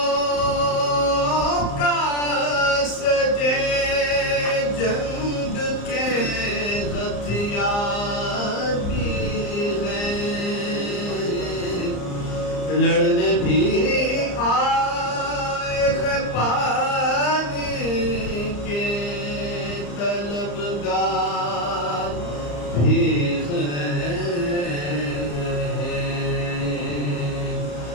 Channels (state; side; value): late; right; 34 ms